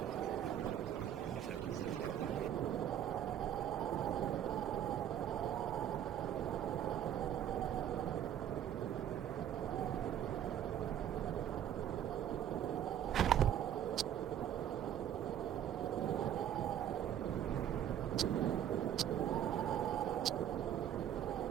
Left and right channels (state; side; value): quieter; left; 10.2 dB